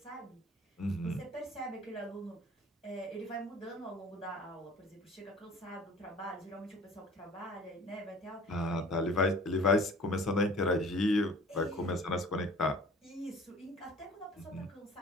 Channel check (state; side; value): normal; both; correlation 0.47